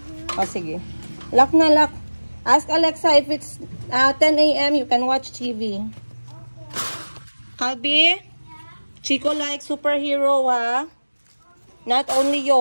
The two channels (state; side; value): inverted; both; correlation -1.00